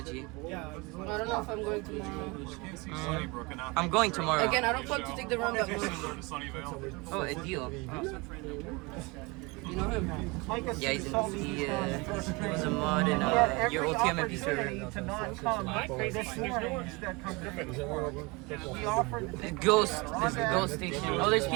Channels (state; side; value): quieter; left; 26.3 dB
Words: I don't know if I'm going tomorrow. I'm going tomorrow. Again, I don't plan to take the REM that much. Oh, a deal. You know him? Yeah, he was a mod in your OTM MP server. To not come this morning that come to me. We offered. Ghost. This is Ghost Station. Oh, there's